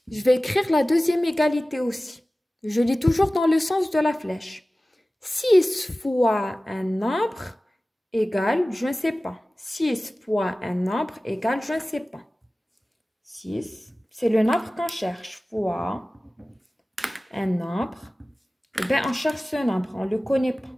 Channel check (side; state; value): both; normal; correlation 0.97